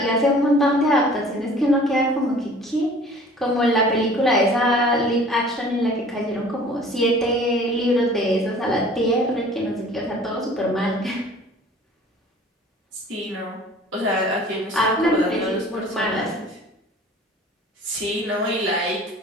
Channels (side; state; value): both; normal; correlation 0.48